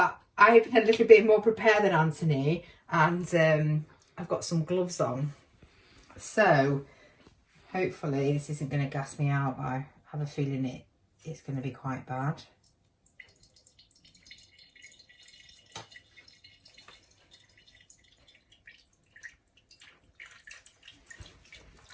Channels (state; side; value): identical; both; correlation 1.00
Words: I've been a little bit more prepared than Anthony, and I've got some gloves on. So hopefully this isn't going to gas me out. I have a feeling it's going to be quite bad.